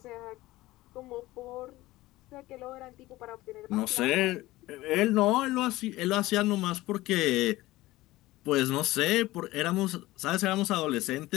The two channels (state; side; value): quieter; right; 18.0 dB